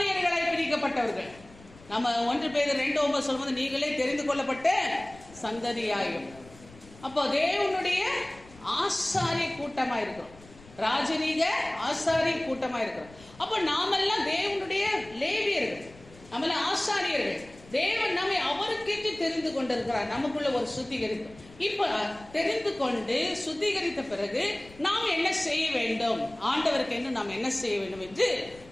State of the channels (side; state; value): left; noise; rumble, 22 dB below the sound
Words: பிரிக்கப்பட்டவர்கள். நம்ம 1 பேதுரு 2:9 சொல்லும்போது நீங்களே தெரிந்து கொள்ளப்பட்ட சந்ததியாயும். அப்போ தேவனுடைய ஆசாரிய கூட்டமா இருக்கிறோம், ராஜரீக ஆசாரிய கூட்டமா இருக்கிறோம். அப்போ நாமெல்லாம் தேவனுடைய லேவியர்கள், நம்மெல்லாம் ஆசாரியர்கள். தேவன் நம்மை அவருக்கேற்று தெரிந்து கொண்டிருக்கிறார். நமக்குள்ள ஒரு சுத்திகரிப்பு. இப்ப தெரிந்து கொண்டு சுத்திகரித்த பிறகு நாம் என்ன செய்ய வேண்டும், ஆண்டவருக்கு என்று நாம் என்ன செய்ய வேண்டும் என்று